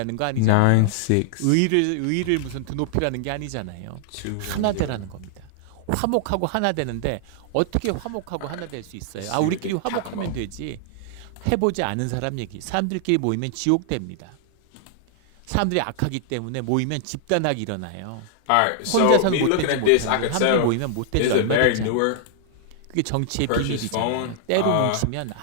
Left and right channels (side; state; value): both; different; correlation -0.01